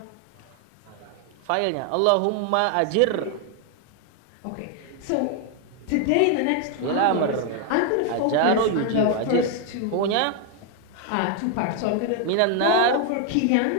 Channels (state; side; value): different; both; correlation 0.00